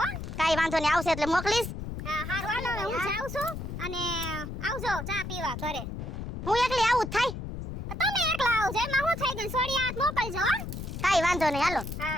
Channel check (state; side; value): noise; left; rumble, 7 dB below the sound